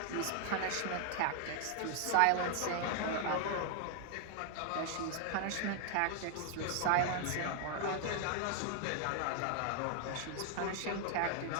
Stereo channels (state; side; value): different; both; correlation 0.00